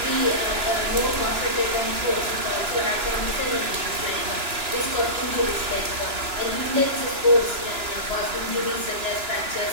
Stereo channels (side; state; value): left; late; 2.9 ms